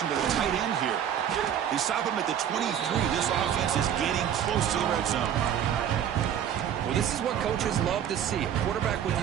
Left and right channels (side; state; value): left; quieter; 9.4 dB